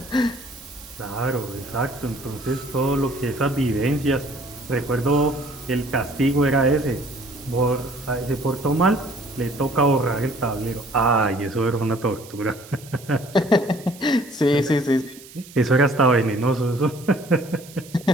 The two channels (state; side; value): noise; right; hiss, 20 dB below the sound